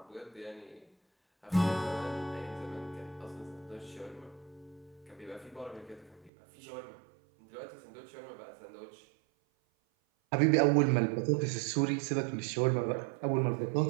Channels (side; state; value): left; drops out; at 6.3 s